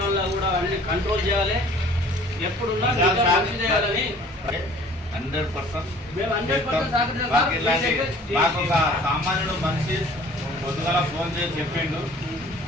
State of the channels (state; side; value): normal; both; correlation 0.50